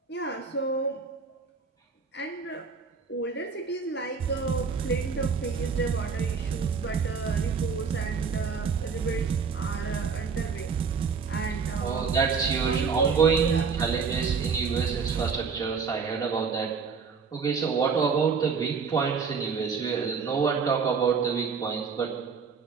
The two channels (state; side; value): quieter; left; 5.5 dB